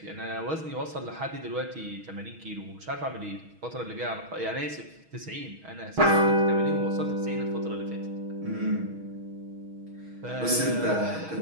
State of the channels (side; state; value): left; late; 6.3 ms